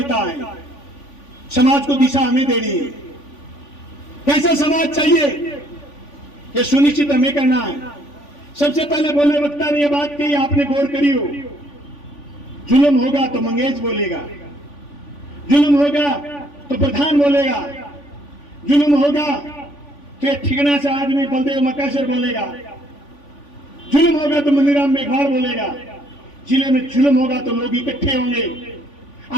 हैं। समाज को दिशा हमें देनी है। कैसा समाज चाहिए ये सुनिश्चित हमें करना है। सबसे पहले बोले वक्ता ने यह बात कही, आपने गौर करी हो, जुल्म होगा तो मंगेश बोलेगा, जुल्म होगा तो प्रधान बोलेगा, जुल्म होगा तो ये ठिकाना से आदमी बलदेव मकासर बोलेगा, जुल्म होगा तो मनीराम मेघवाल बोलेगा। जिले में जुल्म होगा तो लोग इकट्ठे होंगे,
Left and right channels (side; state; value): right; late; 3.5 ms